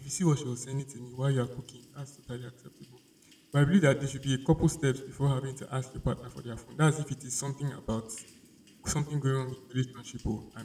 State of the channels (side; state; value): both; identical; correlation 1.00